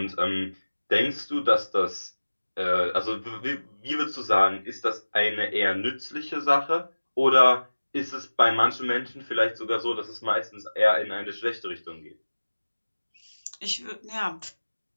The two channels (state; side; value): inverted; both; correlation -1.00